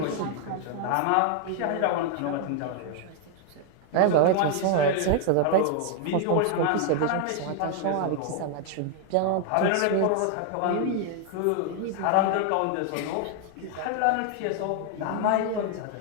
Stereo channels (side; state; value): both; different; correlation 0.00